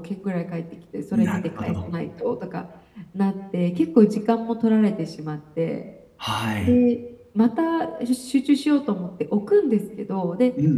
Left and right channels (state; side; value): identical; both; correlation 1.00